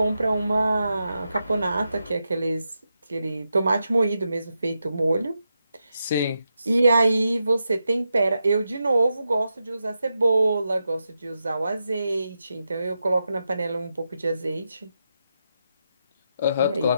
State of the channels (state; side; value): inverted; both; correlation -0.87